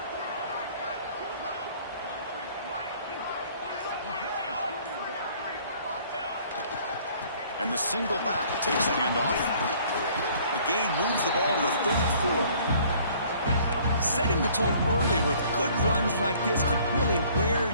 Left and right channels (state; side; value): inverted; both; correlation -0.57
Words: And the single back takes the handoff. The gain moves the ball to the 34. Setting the tone early with good runs like this could really wear